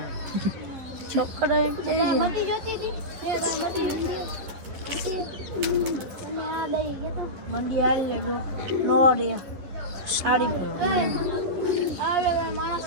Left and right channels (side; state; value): left; late; 11 ms